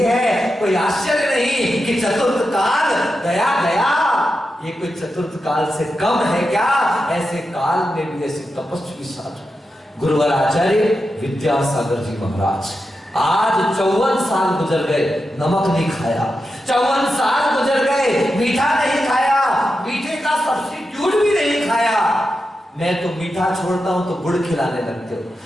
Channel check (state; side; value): normal; both; correlation 0.89